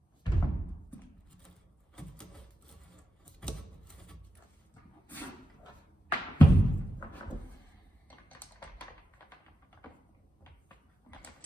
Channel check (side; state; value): both; normal; correlation 0.88